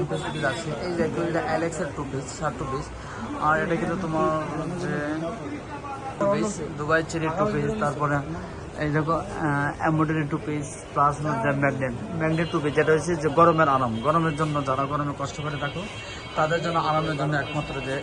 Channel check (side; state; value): both; identical; correlation 1.00